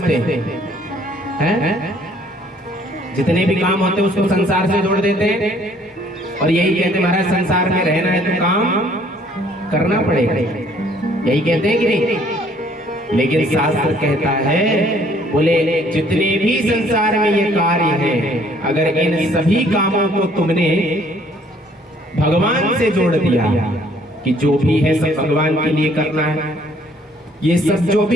हैं। जितने भी काम होते हैं उसको संसार से जोड़ देते हैं और यही कहते हैं महाराज संसार में रहना है तो काम करना पड़ेगा, यही कहते हैं कि नहीं? लेकिन शास्त्र कहता है, बोले जितने भी संसार में ये कार्य हैं, अगर इन सभी कामों को तुमने भगवान से जोड़ दिया कि जो भी है सब भगवान के लिए करना है, ये सब जो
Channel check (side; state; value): both; normal; correlation 0.61